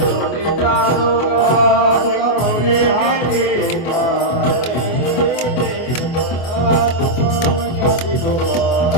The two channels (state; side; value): late; right; 24 ms